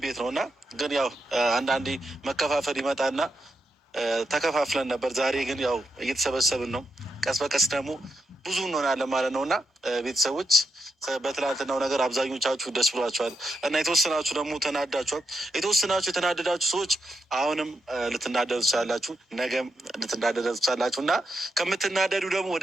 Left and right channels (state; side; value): normal; both; correlation 0.84